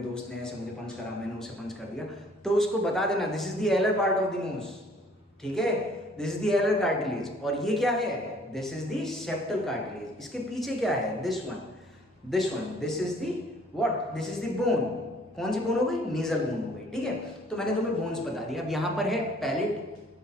ने ऐसे मुझे पंच करा, मैंने उसे पंच कर दिया, तो उसको बता देना this is the alar part of the nose, ठीक है, this is the alar cartilage. और ये क्या है, this is the septal cartilage. इसके पीछे क्या है, this one, this is the what, this is the bone. कौन सी बोन हो गई, नेजल बोन हो गई, ठीक है। तो मैंने तुम्हें बोन्स बता दिया। अब यहाँ पर है palate,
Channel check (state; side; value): normal; both; correlation 0.58